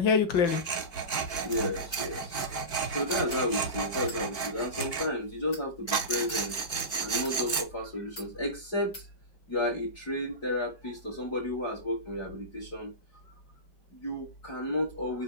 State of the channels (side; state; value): right; late; 4.5 ms